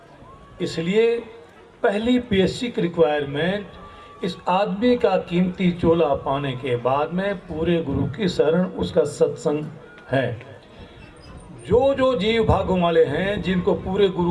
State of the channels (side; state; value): both; identical; correlation 1.00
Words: इसलिए पहली बेसिक रिक्वायरमेंट, इस आदमी का कीमती चोला पाने के बाद में पूरे गुरु की शरण, उसका सत्संग है। जो जो जीव भागों वाले हैं, जिनको पूरे